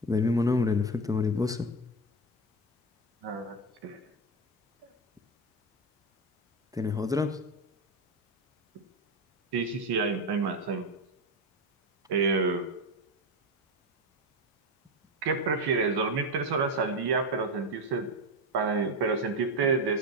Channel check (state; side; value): normal; both; correlation 0.15